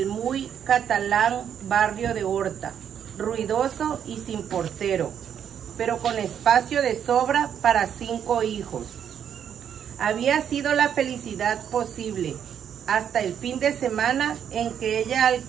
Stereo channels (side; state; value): left; quieter; 8.7 dB